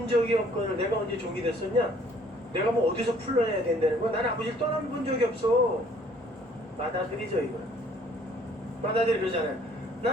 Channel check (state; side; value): normal; both; correlation 0.58